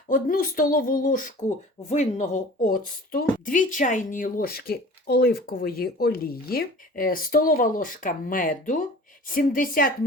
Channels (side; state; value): both; normal; correlation 0.43